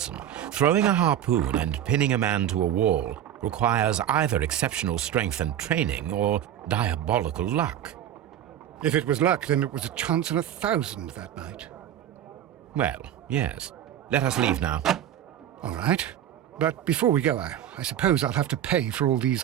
Throwing a harpoon and pinning a man to a wall requires either exceptional strength and training or diabolical luck. If it was luck, then it was a chance in 1,000 that night. Well, yes. Let us leave now. All right. But before we go, I suppose I'll have to pay for all these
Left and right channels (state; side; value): quieter; left; 10.8 dB